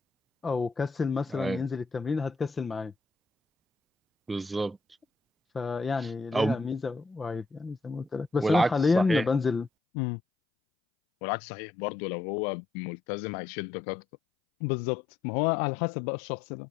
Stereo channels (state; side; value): drops out; right; at 9.7 s